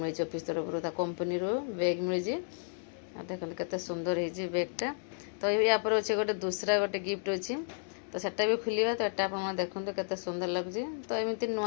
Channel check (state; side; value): silent; right; digital silence